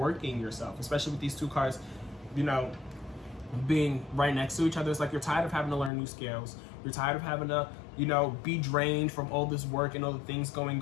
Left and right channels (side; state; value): right; drops out; at 5.9 s